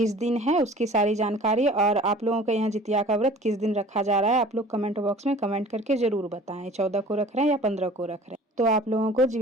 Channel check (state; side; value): normal; both; correlation 0.46